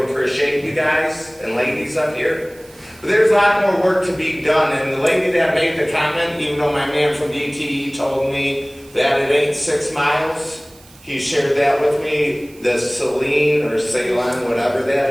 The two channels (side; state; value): right; noise; hiss, 25 dB below the sound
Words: you guys and ladies up here. But there's a lot more work to be done. And the lady that made the comment, even though my man from DTE told me that it ain't 6 miles, he shared that with me, the Celine or Ceylon, whatever that